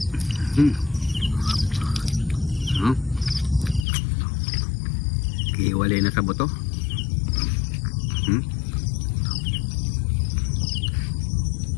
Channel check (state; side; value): drops out; right; at 3.9 s